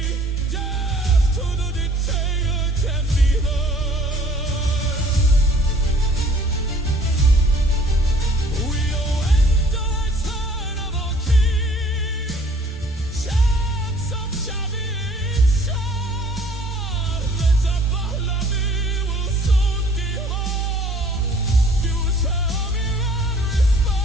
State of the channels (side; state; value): both; normal; correlation 0.55